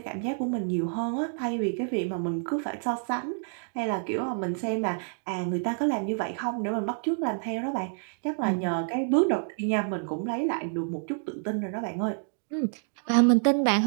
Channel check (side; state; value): left; silent; 59 dB below the other